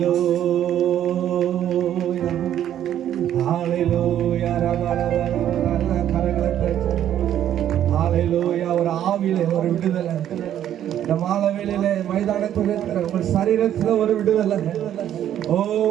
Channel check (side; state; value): left; quieter; 10.9 dB